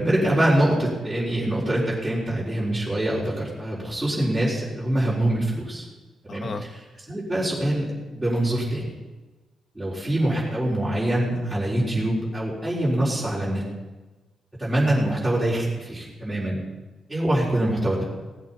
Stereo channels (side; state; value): both; normal; correlation 0.92